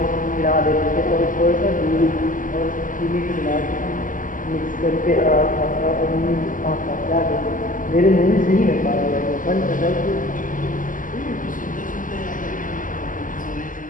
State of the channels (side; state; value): right; late; 0.38 ms